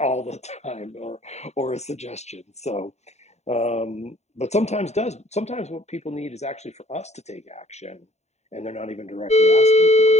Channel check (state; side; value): late; right; 0.32 ms